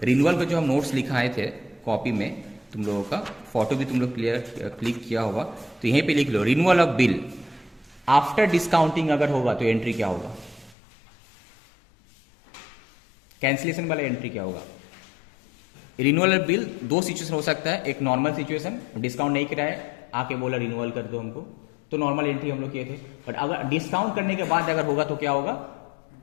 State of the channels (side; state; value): right; drops out; at 10.8 s